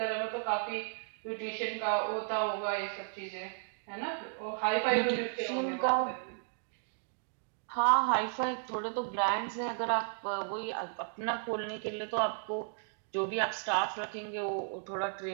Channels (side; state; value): left; silent; digital silence